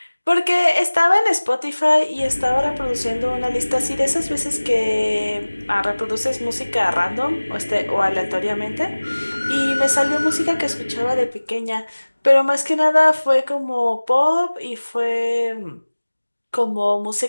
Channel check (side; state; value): both; inverted; correlation -1.00